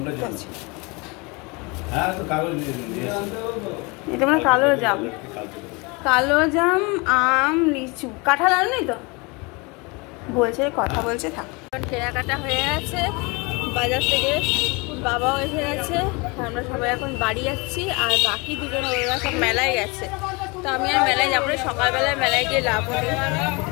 পাচ্ছি, এটা মানে কালো জাম আম লিচু, কাঁঠাল আনেনি তো, বলছে কথা বলছে থাক। কেনাকাটা হয়ে গেছে বাজার থেকে, বাবাও এসে গেছে, আমরা সবাই এখন বাড়ি যাচ্ছি, আর বাকি দুজন ওরা সব মেলায় গেছে, তো আমি আর মেলায় যাবো না, সকালবেলায় মেলায় গিয়ে লাভ হবে,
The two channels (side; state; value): right; quieter; 27.9 dB